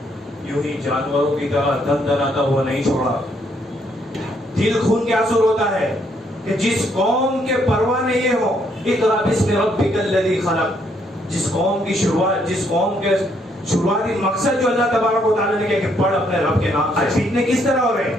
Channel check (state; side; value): normal; both; correlation 0.71